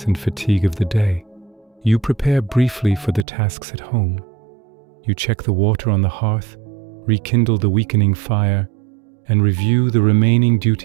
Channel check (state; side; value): drops out; left; at 3.2 s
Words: and fatigue of the day. You prepare briefly for the tasks at home. You check the water on the hearth, rekindle the weakening fire, and review the remaining